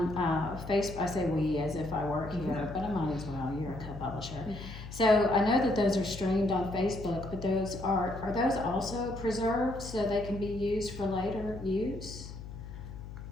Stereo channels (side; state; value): left; noise; hum, 11 dB below the sound